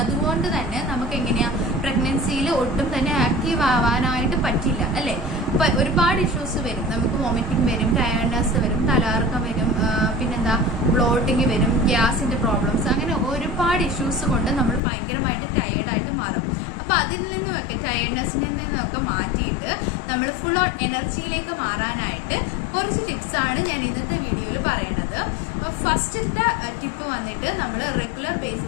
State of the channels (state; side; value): drops out; right; at 14.8 s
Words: അതുകൊണ്ട് തന്നെ നമുക്ക് എങ്ങനെയാ പ്രഗ്നൻസിയിൽ ഒട്ടും തന്നെ ആക്റ്റീവ് ആവാനായിട്ട് പറ്റില്ല അല്ലേ. ഇപ്പൊ ഒരുപാട് ഇഷ്യൂസ് വരും. നമുക്ക് വോമിറ്റിംഗ് വരും, ടയർഡ്നെസ് വരും, തലകറക്കം വരും, പിന്നെന്താ ബ്ലോട്ടിങ് വരും, ഗ്യാസിന്റെ പ്രോബ്ലംസ്, അങ്ങനെ ഒരുപാട് ഇഷ്യൂസ് കൊണ്ട് നമ്മൾ ഭയങ്കരമായിട്ട് ടയേർഡായിട്ട് മാറും. അപ്പൊ അതിൽ നിന്നുമൊക്കെ ടയേർഡ്നെസ്സിൽ നിന്നൊക്കെ മാറ്റിയിട്ട് നമ്മൾ ഫുൾ ഓൺ എനർജിയിലേക്ക് മാറാനായിട്ട് കുറച്ച് ടിപ്സ് ആണ് ഞാൻ ഇന്നത്തെ വീഡിയോയിൽ പറയണത്. അപ്പൊ ഫസ്റ്റത്തെ ടിപ്പ് വന്നിട്ട് നമ്മൾ റെഗുലർ